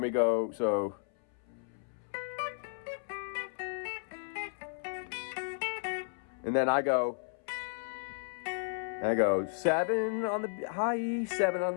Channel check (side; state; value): right; silent; 55 dB below the other